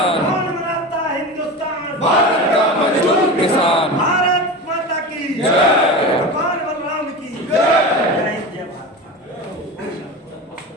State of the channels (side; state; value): both; normal; correlation 0.27